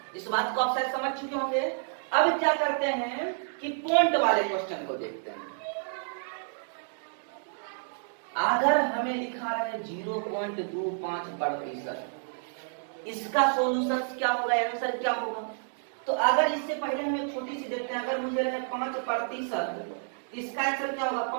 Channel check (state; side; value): silent; left; digital silence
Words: इस बात को आप शायद समझ चुके होंगे। अब क्या करते हैं कि पॉइंट वाले क्वेश्चन को देखते हैं। अगर हमें लिखा रहे 0.25%, इसका सॉल्यूशन क्या होगा, आंसर क्या होगा? तो अगर इससे पहले हम एक छोटी सी देखते हैं, अगर मुझे रहे 5%, इसका आंसर क्या होगा?